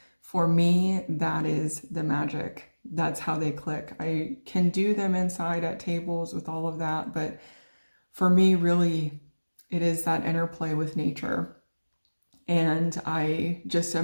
for me, that is the magic. That's how they click. I can do them inside at tables with all of that, but for me, really, it is that interplay with nature. And I just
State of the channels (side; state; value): both; inverted; correlation -1.00